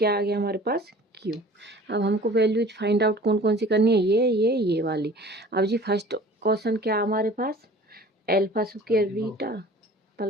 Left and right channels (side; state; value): both; normal; correlation 0.46